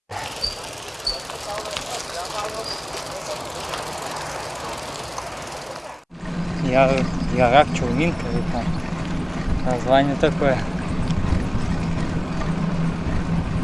Ярак, Чурминка, название такое.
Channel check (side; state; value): both; identical; correlation 1.00